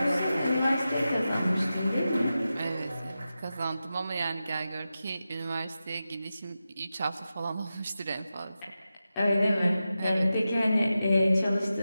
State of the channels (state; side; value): inverted; both; correlation -0.92